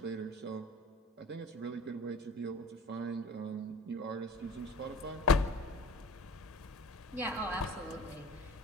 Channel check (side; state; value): both; normal; correlation 0.43